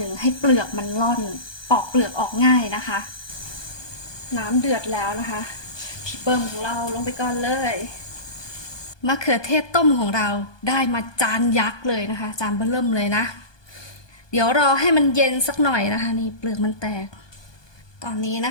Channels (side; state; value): right; late; 1.2 ms